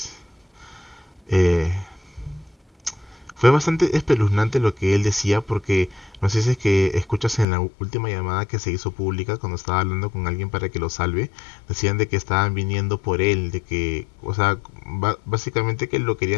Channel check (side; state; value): right; drops out; at 7.5 s